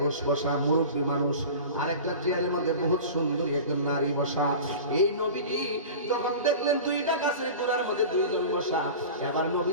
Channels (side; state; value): both; inverted; correlation -0.35